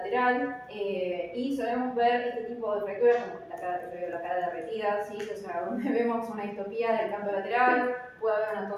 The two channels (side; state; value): both; identical; correlation 1.00